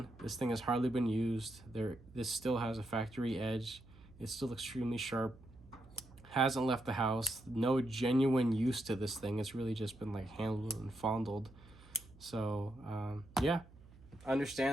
this thing has hardly been used. This still has a factory edge. It's still extremely sharp. Hasn't left the house. No genuine use to this thing. It's really just been like handled and fondled. So yeah,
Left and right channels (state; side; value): noise; right; hum, 22 dB below the sound